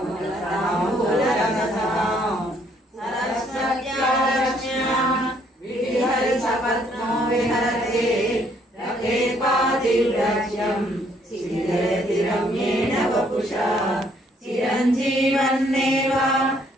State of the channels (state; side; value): normal; both; correlation 0.66